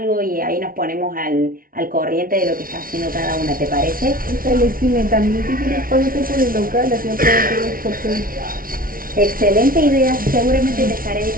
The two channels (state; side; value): late; left; 0.42 ms